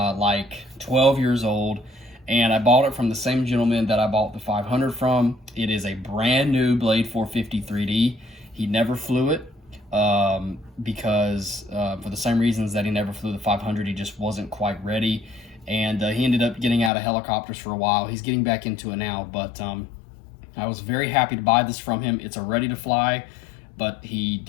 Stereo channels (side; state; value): right; drops out; at 16.9 s